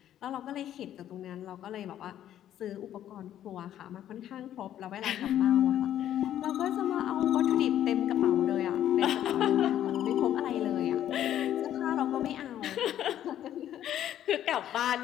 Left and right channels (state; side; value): quieter; right; 11.4 dB